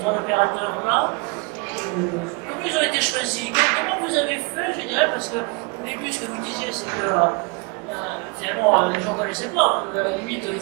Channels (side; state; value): left; quieter; 29.2 dB